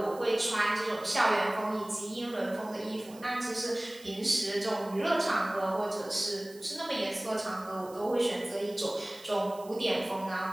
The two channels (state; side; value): noise; right; hiss, 22 dB below the sound